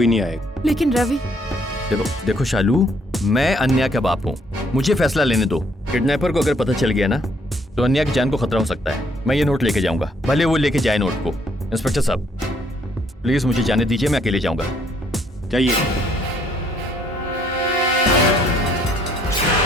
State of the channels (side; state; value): both; normal; correlation 0.66